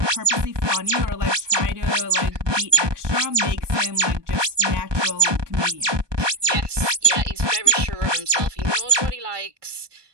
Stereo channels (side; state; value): left; late; 1.2 ms